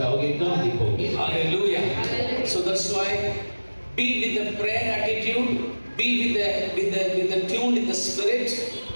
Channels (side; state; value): both; inverted; correlation -1.00